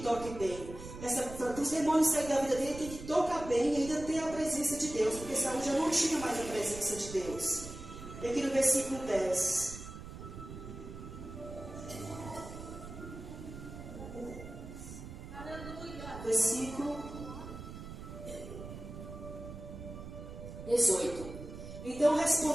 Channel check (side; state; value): right; noise; rumble, 11 dB below the sound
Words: toque bem. Para os demônios saírem da vida dele, tem que tocar bem e ainda ter a presença de Deus, porque Saul já não tinha mais a presença de Deus. E aqui no versículo 10. Versículo 18. Então